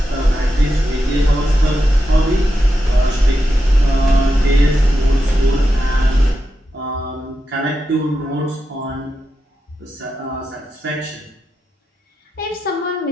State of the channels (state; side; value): normal; both; correlation 0.88